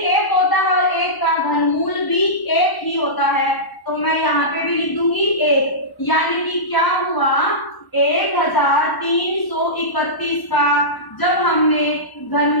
होता है और एक का घनमूल भी एक ही होता है, तो मैं यहाँ पे भी लिख दूंगी एक। यानी कि क्या हुआ, 1331 का जब हमने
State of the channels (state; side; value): late; right; 1.1 ms